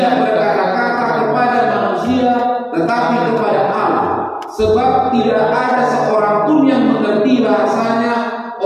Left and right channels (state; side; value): identical; both; correlation 1.00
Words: berkata-kata kepada manusia tetapi kepada Allah, sebab tidak ada seorang pun yang mengerti bahasanya.